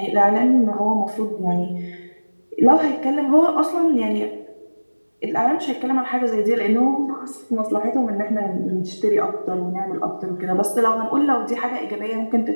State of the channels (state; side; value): inverted; both; correlation -1.00